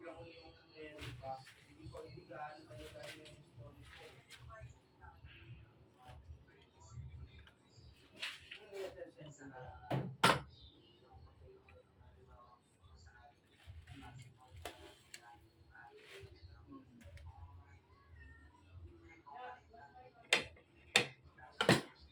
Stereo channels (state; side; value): identical; both; correlation 1.00